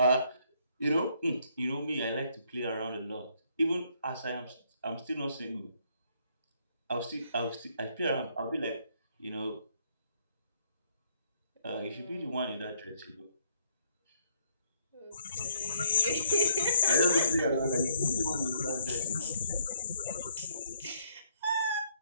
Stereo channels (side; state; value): both; inverted; correlation -0.68